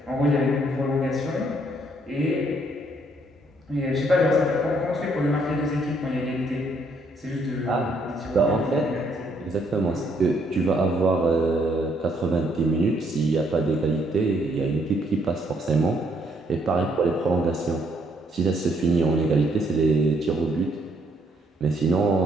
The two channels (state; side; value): normal; both; correlation 0.69